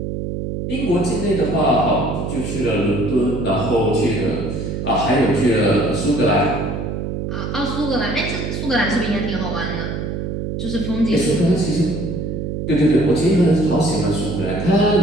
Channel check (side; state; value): right; noise; hum, 4 dB below the sound